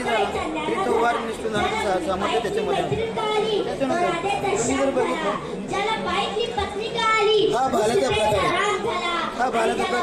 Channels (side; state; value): both; identical; correlation 1.00